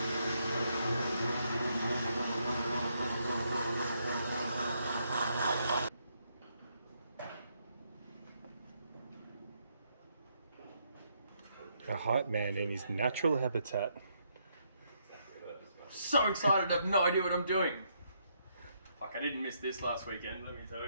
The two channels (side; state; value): both; inverted; correlation -0.75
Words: A hype man in his natural habitat. So excited, I have no idea what I'm doing. Fuck, I didn't miss this last weekend, let me tell